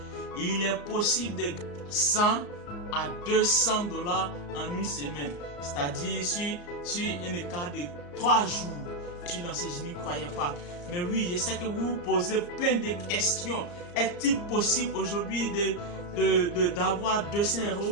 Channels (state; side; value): late; right; 34 ms